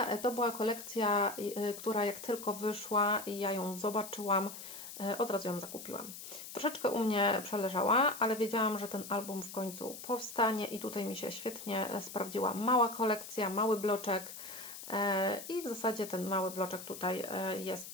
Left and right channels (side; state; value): left; noise; hiss, 11 dB below the sound